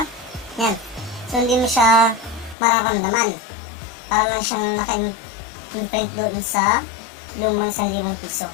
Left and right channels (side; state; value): right; drops out; at 2.6 s